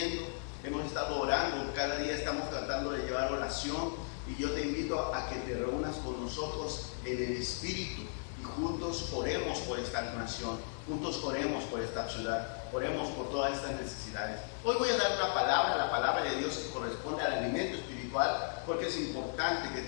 Hemos estado orando, cada día estamos tratando de llevar oración, y yo te invito a que te reúnas con nosotros en el Espíritu y juntos oremos por esta nación, juntos oremos por esta ciudad, oremos por todas estas necesidades. Hoy voy a dar una palabra, la palabra de Dios que corresponde al alimento espiritual, porque es importante que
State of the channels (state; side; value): silent; right; digital silence